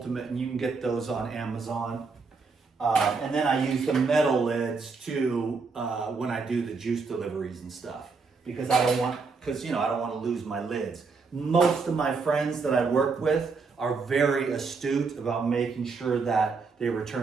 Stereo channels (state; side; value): quieter; left; 4.6 dB